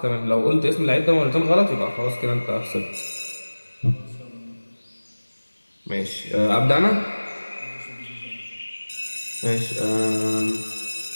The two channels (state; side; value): inverted; both; correlation -1.00